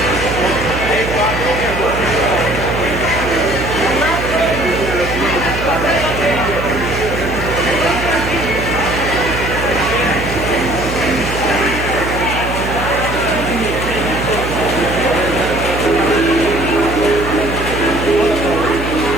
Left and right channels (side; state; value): right; noise; hum, 6 dB below the sound